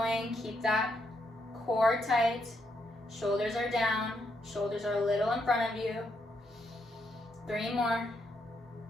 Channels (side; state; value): both; normal; correlation 0.78